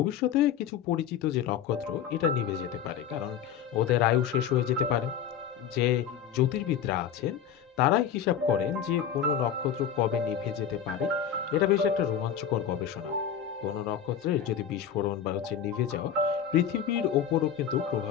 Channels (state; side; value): quieter; right; 8.6 dB